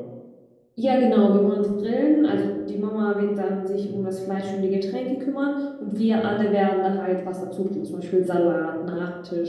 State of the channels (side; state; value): both; identical; correlation 1.00